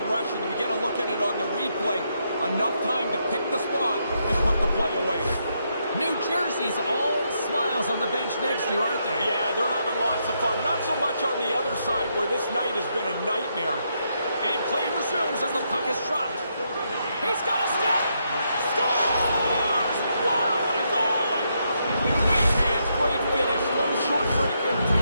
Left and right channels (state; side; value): inverted; both; correlation -0.79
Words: rush, and we get a look at it on the replay. Enough time to pick the spot and put the play away. New Jersey's all smiles on the bench next to you, aren't they? Yeah, they're having lots of fun. Not so much on the other side where this night has been a nightmare. And play resumes as the puck is dropped. He's got a step. Scores! Wow, what a goal! Nice hands, great finish. Little short break in